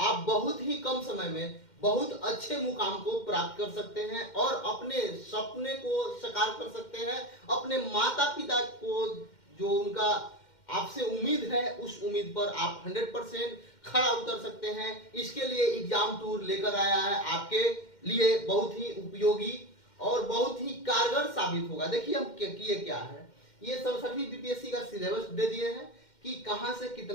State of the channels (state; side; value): late; right; 2.1 ms